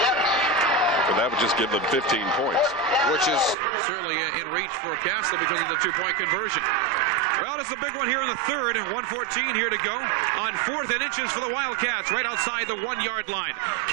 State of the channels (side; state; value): left; drops out; at 3.6 s